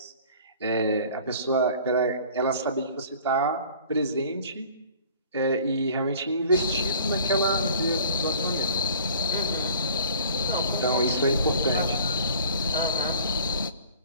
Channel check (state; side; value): inverted; both; correlation -0.48